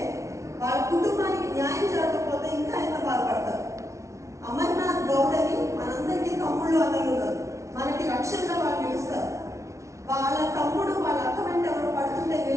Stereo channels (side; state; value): left; late; 0.14 ms